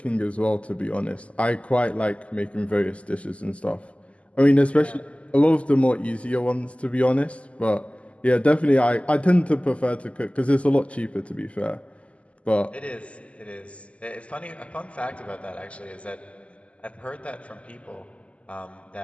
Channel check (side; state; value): right; late; 0.062 ms